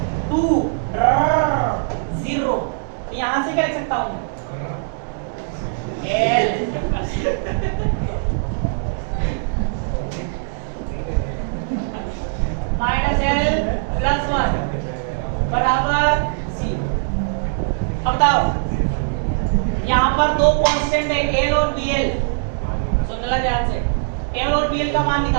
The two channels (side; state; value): left; silent; digital silence